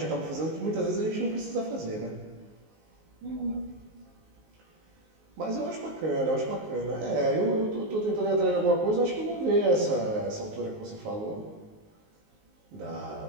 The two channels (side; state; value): left; late; 19 ms